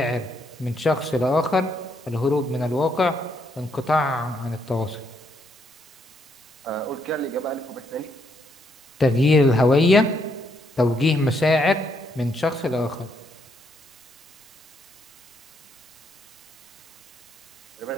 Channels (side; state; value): both; normal; correlation 0.74